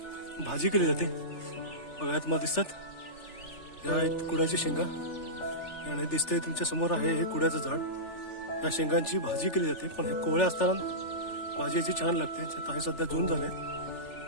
भाजी केली जाते. बघा, तुम्हाला दिसतात या आहेत कुड्याची शेंगा आणि दिसतंय तुमच्या समोर आहे हे कुड्याचं झाड. या शेंगांची भाजी केली जाते, पण हे कोवळ्या असताना भाजी याची छान लागते. आता हे सध्या जून झाले,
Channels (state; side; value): late; right; 3.4 ms